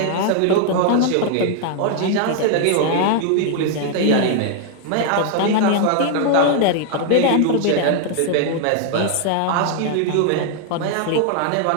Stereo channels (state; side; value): different; both; correlation 0.00